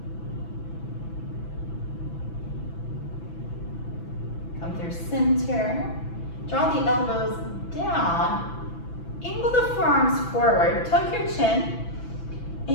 Come through center. Draw the elbows down. Angle the forearms forward. Tuck your chin.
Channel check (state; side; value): late; right; 6.0 ms